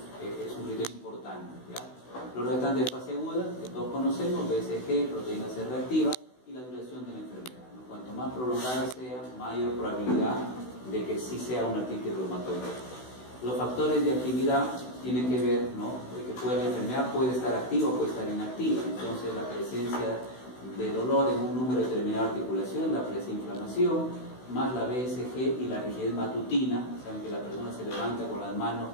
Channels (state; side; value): late; right; 16 ms